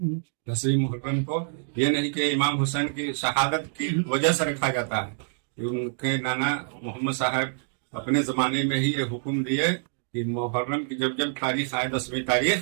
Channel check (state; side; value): silent; left; digital silence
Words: 10वीं मुहर्रम को। ये नहीं कि इमाम हुसैन की शहादत की वजह से रखा जाता है, उनके नाना मोहम्मद साहब अपने जमाने में ही ये हुक्म दिए कि मुहर्रम की जब जब तारीख आए 10वीं